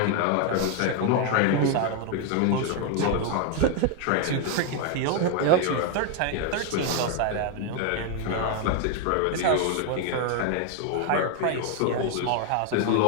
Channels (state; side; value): different; both; correlation 0.00